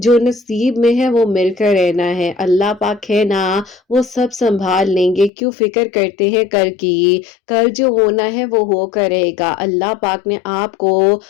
نصیب میں ہے وہ مل کر رہنا ہے، اللہ پاک ہے نا وہ سب سنبھال لیں گے، کیوں فکر کرتے ہیں کل کی؟ کل جو ہونا ہے وہ ہو کر رہے گا۔ اللہ پاک نے آپ کو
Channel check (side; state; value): right; drops out; at 5.3 s